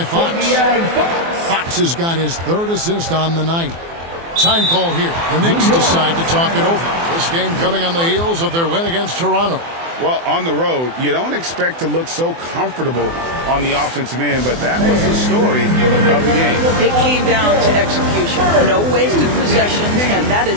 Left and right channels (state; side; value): late; left; 24 ms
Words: Fox. Fox has got his 3rd assist on the night. Time call here. The Knicks decide to talk it over. This game coming on the heels of their win against Toronto. Well, on the road, you don't expect to look so comfortable on the offensive end, but that was the story of the game. It came down to execution. No wasted possessions, and that